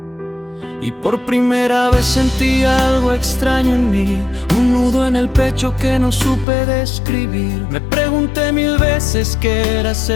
Y por primera vez sentí algo extraño en mí, un nudo en el pecho que no supe describir. Me pregunté 1000 veces qué era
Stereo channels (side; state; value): right; drops out; at 6.5 s